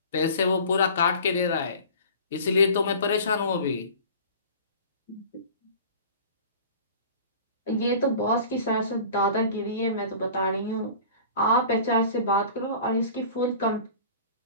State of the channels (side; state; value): both; inverted; correlation -0.41